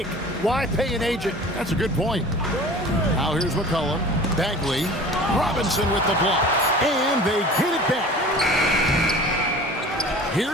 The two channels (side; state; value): both; normal; correlation 0.42